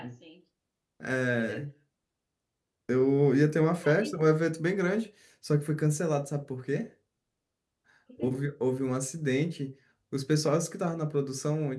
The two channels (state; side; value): identical; both; correlation 1.00